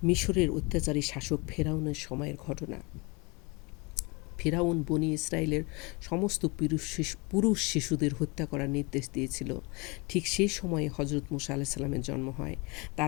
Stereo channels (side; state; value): right; quieter; 27.9 dB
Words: মিশরের অত্যাচারী শাসক ফেরাউনের সময়ের ঘটনা। ফেরাউন বনি ইসরায়েলের সমস্ত পুরুষ শিশুদের হত্যা করার নির্দেশ দিয়েছিল। ঠিক সেই সময়ে হজরত মুসা আলাইহিস সালামের জন্ম হয়।